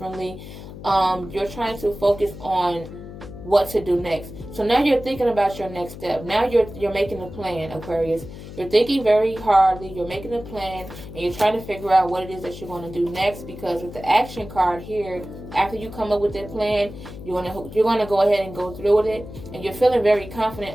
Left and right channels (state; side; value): noise; left; hum, 13 dB below the sound